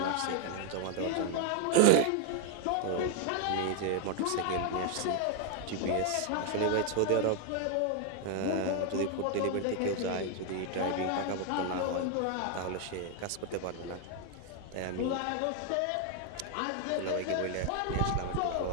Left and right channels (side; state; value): both; different; correlation 0.01